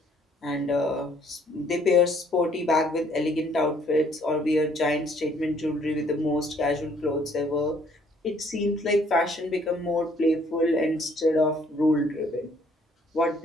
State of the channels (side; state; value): both; normal; correlation 0.62